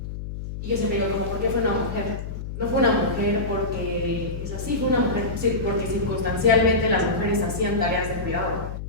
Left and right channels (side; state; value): left; noise; hum, 7 dB below the sound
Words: Y yo siempre digo como, ¿por qué fue una mujer? No fue una mujer porque es así, fue una mujer porque circunstancialmente las mujeres hacían tareas de cuidado,